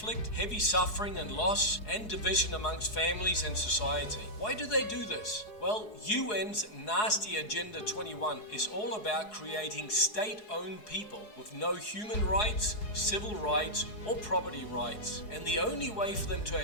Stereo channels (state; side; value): late; right; 4.7 ms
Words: heavy suffering and loss, and division amongst families and society? Why do they do this? Well, UN's nasty Agenda 21 is all about creating state-owned people with no human rights, civil rights, or property rights. And the only way for them to